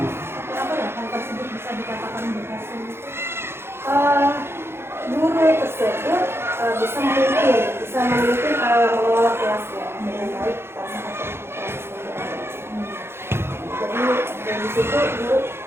seperti apa ya? Hal tersebut bisa dikatakan berhasil itu guru tersebut bisa memimpin mengelola kelasnya dengan baik pada saat proses pembelajaran. Jadi dari situ guru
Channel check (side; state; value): left; late; 0.12 ms